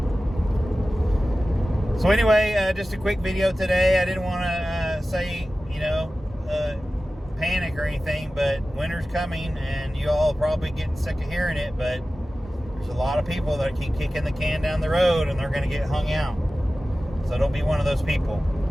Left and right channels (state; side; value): normal; both; correlation 0.95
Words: So anyway, just a quick video today. I didn't want to say, panic or anything, but winter's coming, and you all are probably getting sick of hearing it, but there's a lot of people that keep kicking the can down the road, and they're going to get hung out. So don't be one of those people.